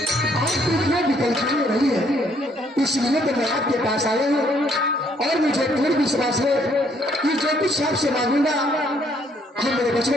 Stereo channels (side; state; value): both; normal; correlation 0.67